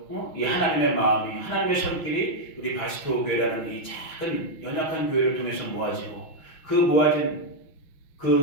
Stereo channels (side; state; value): right; late; 5.9 ms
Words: 이 하나님의 마음이, 하나님의 손길이 우리 바스토 교회라는 이 작은 연약한 교회를 통해서 모아지고, 그 모아진